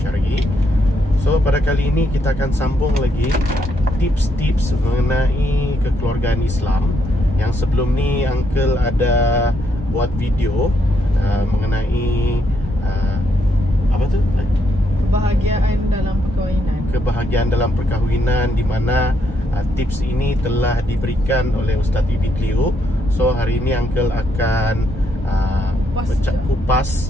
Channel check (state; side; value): normal; both; correlation 0.76